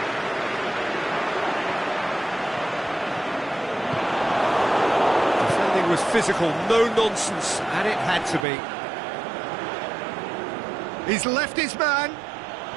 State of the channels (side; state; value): left; drops out; at 8.5 s